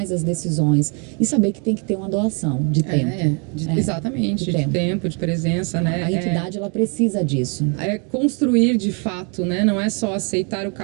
as decisões e saber que tem que ter uma doação de tempo. Exatamente, de tempo, de presença, né? A entidade ela precisa disso. É construir de fato, né? Não é só aceitar o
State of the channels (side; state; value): left; quieter; 36.0 dB